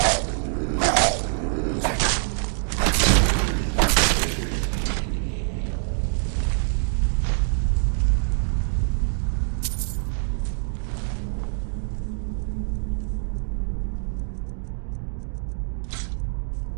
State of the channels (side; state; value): left; silent; 62 dB below the other